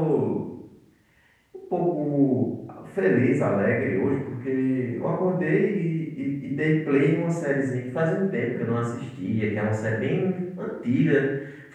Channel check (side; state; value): both; identical; correlation 1.00